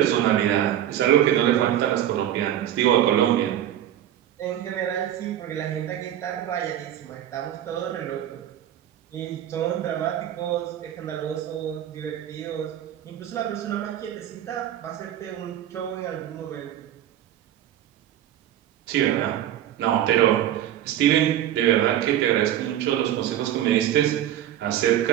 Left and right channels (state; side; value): quieter; left; 11.5 dB